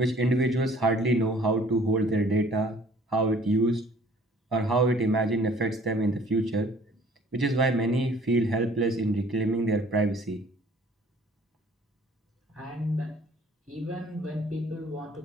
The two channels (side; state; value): both; normal; correlation 0.54